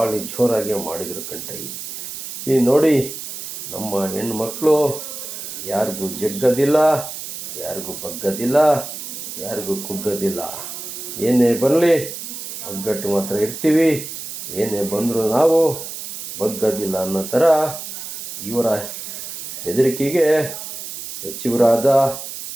ಜೋರಾಗಿ ಮಾಡಿದರು ಕಣ್ರಿ. ಈ ನೋಡಿ, ನಮ್ಮ ಹೆಣ್ಮಕ್ಳು ಯಾರಿಗೂ ಜಗ್ಗದಿಲ್ಲ, ಯಾರಿಗೂ ಬಗ್ಗದಿಲ್ಲ, ಯಾರಿಗೂ ಕುಗ್ಗದಿಲ್ಲ. ಏನೇ ಬರಲಿ ಒಗ್ಗಟ್ಟು ಮಾತ್ರ ಇರ್ತೀವಿ, ಏನೇ ಬಂದರೂ ನಾವು ಬಗ್ಗದಿಲ್ಲ ಅನ್ನೋ ಥರ ಇವರ ಬೆದರಿಕೆಗೆ ಸಚಿವರಾದ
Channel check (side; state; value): right; noise; hiss, 9 dB below the sound